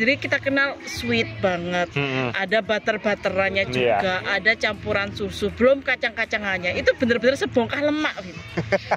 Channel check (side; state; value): both; identical; correlation 1.00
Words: kita kenal sweet banget, ada butter-butterannya juga, ada campuran susu, belum kacang-kacangannya, itu bener-bener sebongkah lemak.